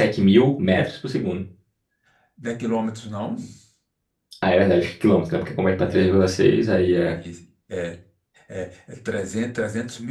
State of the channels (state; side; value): identical; both; correlation 1.00